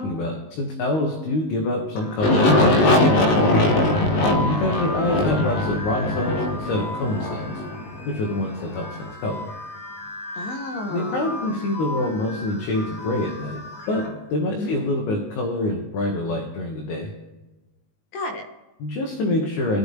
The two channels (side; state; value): right; late; 19 ms